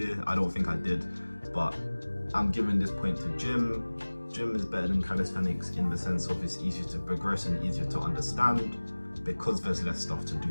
I don't think I did, but I'm giving this point to gym. Gym is better than calisthenics in the sense of it's easier to progress and easier to understand because there's less stuff to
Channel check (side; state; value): both; inverted; correlation -1.00